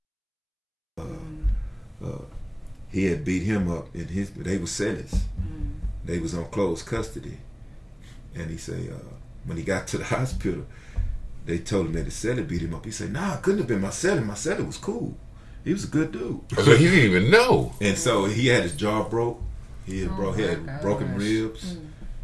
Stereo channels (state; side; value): identical; both; correlation 1.00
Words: He had beat him up in his. They were sentenced. They was on closed custody, and he said when he got to the hospital, they told him that his cellie beat him up. He said, "Nah, it couldn't have been my cellie. My cellie was cool. He was a good dude." So he didn't even know. And so he had his jaw broke. He had broken ribs.